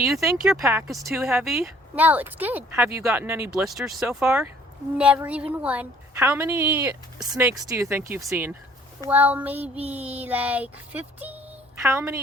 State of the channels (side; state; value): both; normal; correlation 0.57